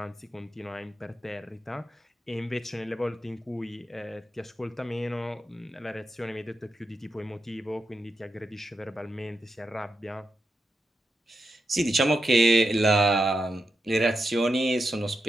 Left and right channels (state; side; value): normal; both; correlation 0.86